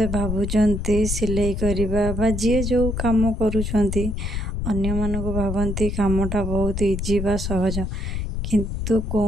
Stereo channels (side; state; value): left; noise; rumble, 3 dB below the sound